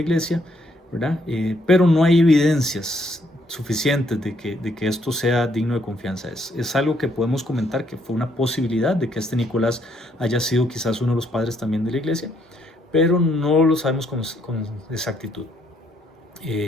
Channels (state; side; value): normal; both; correlation 0.71